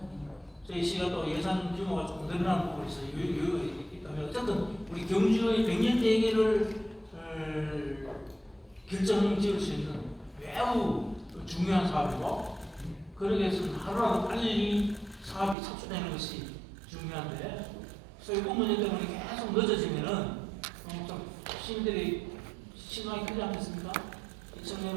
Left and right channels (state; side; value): drops out; left; at 15.6 s